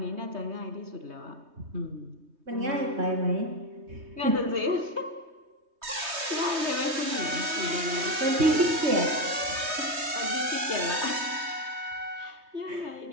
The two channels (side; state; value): left; late; 3.2 ms